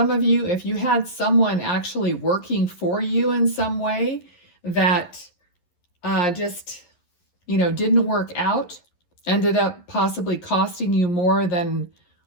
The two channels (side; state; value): right; late; 11 ms